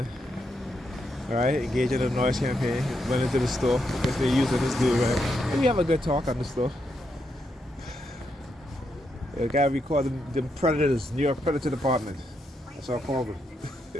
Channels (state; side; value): normal; both; correlation 0.81